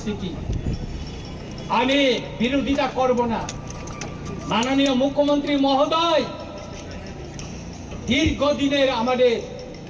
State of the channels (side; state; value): both; identical; correlation 1.00